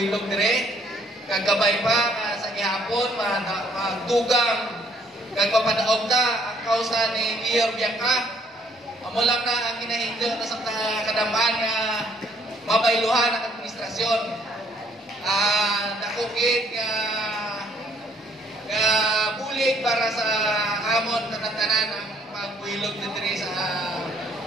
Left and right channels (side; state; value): both; normal; correlation 0.64